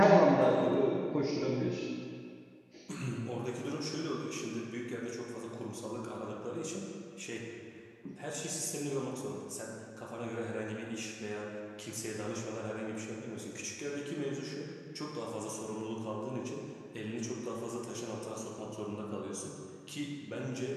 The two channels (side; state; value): both; identical; correlation 1.00